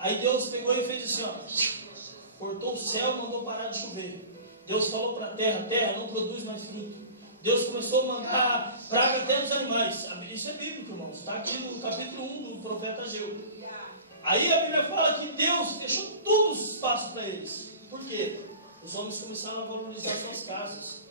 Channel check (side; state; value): both; inverted; correlation -0.38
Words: Deus pegou e fez assim, ó, cortou o céu, mandou parar de chover. Deus falou para a terra não produz mais fruto. Deus começou a mandar praga até nos animais. Isso é bíblico, irmãos. Está aqui no capítulo 1 do profeta Ageu. Aí a Bíblia fala que Deus fechou todos os espaços para eles. Por quê? Os homens começaram a valorizar suas casas.